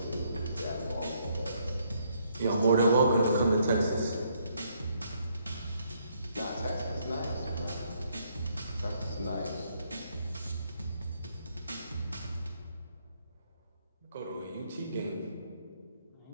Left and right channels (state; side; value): inverted; both; correlation -0.71